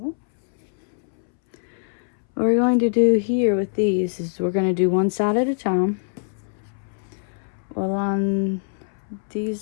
what we're going to do here with these is we're going to do one side at a time. We'll line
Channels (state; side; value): silent; right; 62 dB below the other